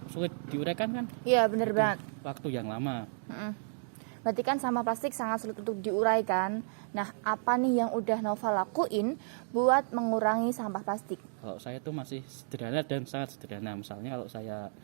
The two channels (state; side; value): silent; left; digital silence